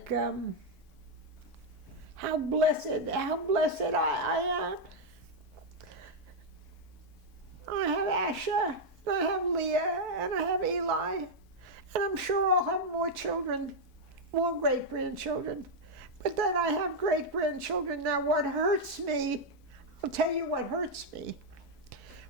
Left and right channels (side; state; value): both; normal; correlation -0.01